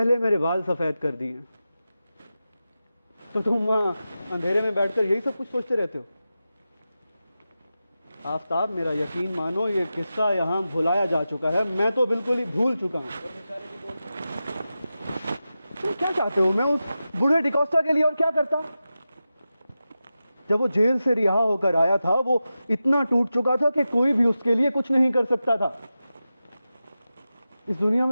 मेरे बाल सफेद कर दिए। तो तुम वहां अंधेरे में बैठकर यही सब कुछ सोचते रहते हो? आफताब, मेरा यकीन मानो, ये किस्सा यहां भुलाया जा चुका है। मैं तो बिल्कुल ही भूल चुका हूं। तुम क्या चाहते हो? मैं उस बूढ़े डिकोस्टा के लिए और क्या करता? जब वो जेल से रिहा होकर आया था, वो इतना टूट चुका था कि कोई भी उसके लिए कुछ नहीं कर सकता था। इस दुनिया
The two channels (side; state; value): both; inverted; correlation -0.92